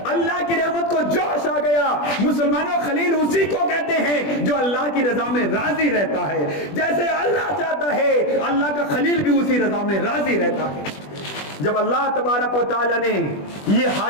اللہ کی رحمت کو جوش آ گیا. مسلمانوں خلیل اسی کو کہتے ہیں جو اللہ کی رضا میں راضی رہتا ہے. جیسے اللہ چاہتا ہے اللہ کا خلیل بھی اسی رضا میں راضی رہتا ہے. جب اللہ تبارک و تعالیٰ نے یہ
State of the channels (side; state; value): right; late; 20 ms